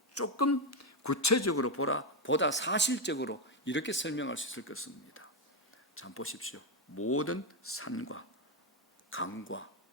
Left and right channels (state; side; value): normal; both; correlation 0.06